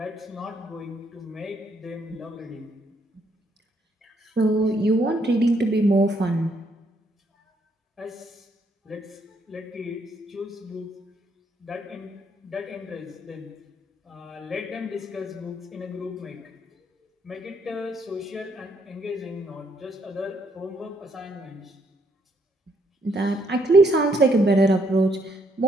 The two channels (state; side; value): normal; both; correlation 0.72